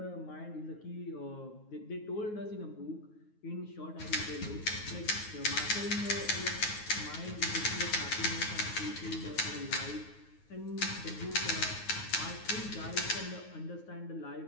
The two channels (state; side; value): late; right; 9.5 ms